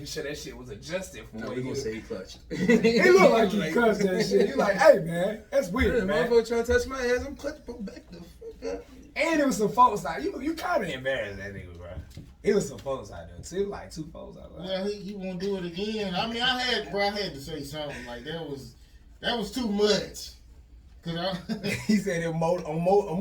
sure that shit was adjusted for No, what we he gonna was. say he clutched. He looked like he cussed that shit. He like, hey man, that's weird, man. Motherfucker trying to touch my ass, I'm clutching, bro, back the fuck up. And it was some folks out. You kind of embarrassed that nigga, bro. It was some folks out there too, like 2 folks out there. Well, he won't do it again. I mean, I had to say something like that was too much. Cause He said it on more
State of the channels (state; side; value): identical; both; correlation 1.00